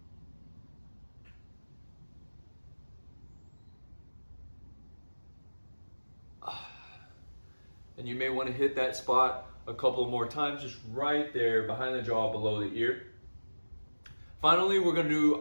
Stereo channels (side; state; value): both; inverted; correlation -1.00